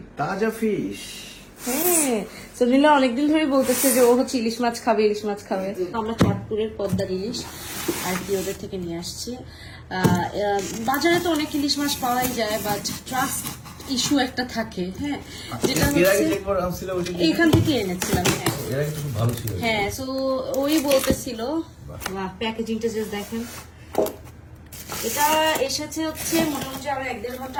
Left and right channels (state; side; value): identical; both; correlation 1.00